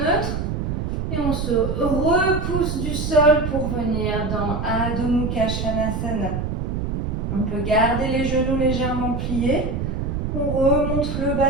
Et on se repousse du sol pour venir dans Adho Mukha Svanasana. On peut garder les genoux légèrement pliés. On remonte le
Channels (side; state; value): right; noise; rumble, 2 dB below the sound